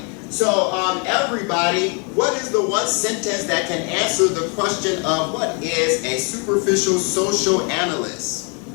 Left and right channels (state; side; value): quieter; right; 35.2 dB